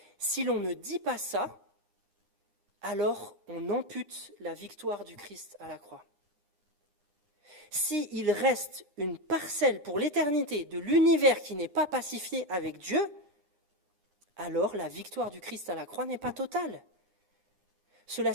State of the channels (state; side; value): late; left; 9.8 ms